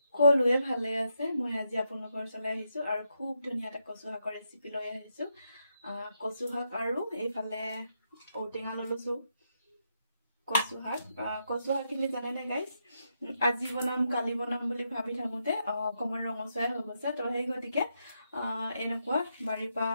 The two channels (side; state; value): both; inverted; correlation -0.81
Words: সকলোৱে ভালে আছে মই আজি আপোনালোকৰ চলাই আহিছো আৰু খুব ধুনীয়া এটা কচু শাকৰ ৰেচিপি লৈ আহিছো কচু শাক আৰু এইফালে ঔটেঙা ললৈছো কচু শাকখিনি জানে না গাইজ আজি বনাম কালি বনাম বুলি ভাবি থাকোতে অকমান ৰঙচুৱাই হৈ গৈছে তো সেই গতিকে এনেকুৱা বাৰীৰ পৰা